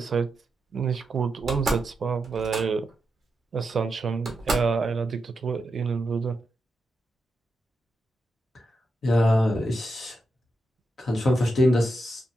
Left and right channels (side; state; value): both; normal; correlation 0.86